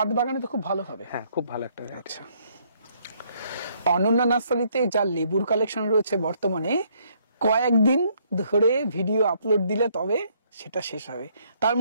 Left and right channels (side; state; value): both; inverted; correlation -0.68